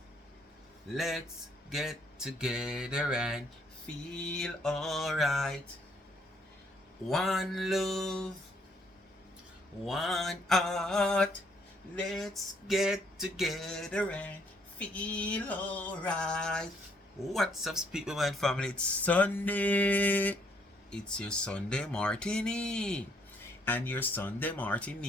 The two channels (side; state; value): both; normal; correlation 0.68